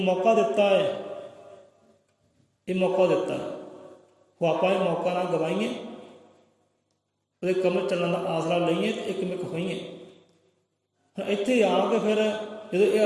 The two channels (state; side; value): identical; both; correlation 1.00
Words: ਦਿੱਤਾ ਹੈ, ਇਹ ਮੌਕਾ ਦਿੱਤਾ ਹੈ, ਉਹ ਆਪਾਂ ਇਹ ਮੌਕਾ ਨਾ ਗਵਾਈਏ, ਉਹਦੇ ਕਮਲ ਚੱਲਣ ਦਾ ਆਸਰਾ ਲਈਏ ਤੇ ਇੱਕਮਿਕ ਹੋਈਏ। ਹੁਣ ਇੱਥੇ ਆ ਕੇ ਫਿਰ ਜਦੋਂ ਇਹ